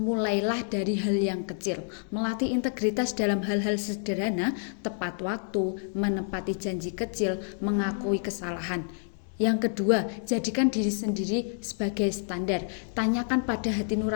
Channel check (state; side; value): silent; right; 59 dB below the other